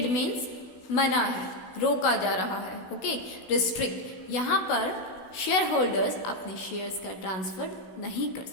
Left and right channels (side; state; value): right; late; 16 ms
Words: means मना है, रोका जा रहा है। ओके, रिस्ट्रिक्ट, यहाँ पर शेयर होल्डर्स अपने शेयर्स का ट्रांसफर नहीं कर